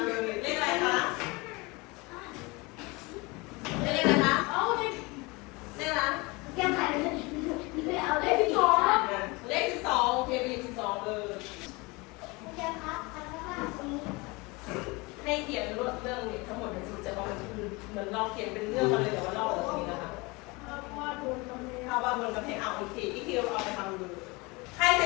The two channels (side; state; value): right; quieter; 25.4 dB